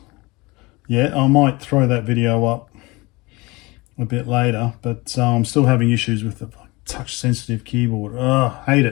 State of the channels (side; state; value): right; quieter; 23.6 dB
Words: yet. I might throw that video up a bit later, but I'm still having issues with the touch sensitive keyboard. Hate